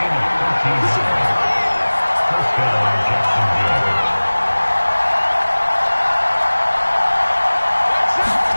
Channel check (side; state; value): both; inverted; correlation -1.00